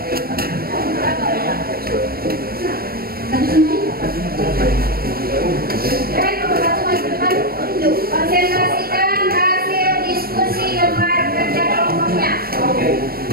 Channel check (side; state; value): left; late; 0.44 ms